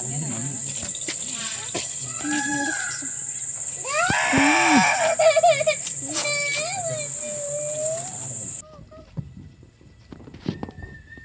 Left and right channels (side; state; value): both; identical; correlation 1.00